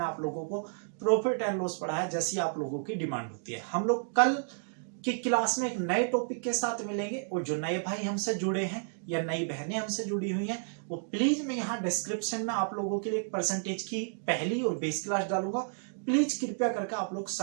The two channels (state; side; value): silent; left; digital silence